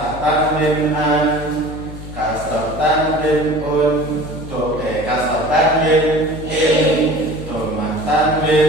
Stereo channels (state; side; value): noise; left; hum, 12 dB below the sound